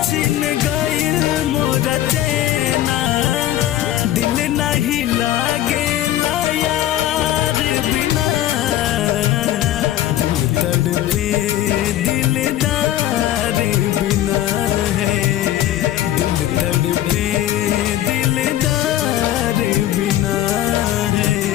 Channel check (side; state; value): right; quieter; 12.9 dB